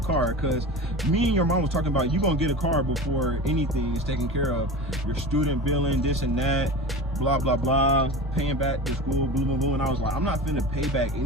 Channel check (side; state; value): both; normal; correlation 0.31